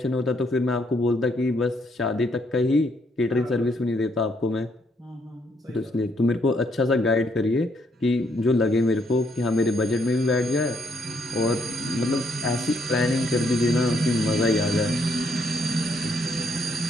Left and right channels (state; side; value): normal; both; correlation 0.72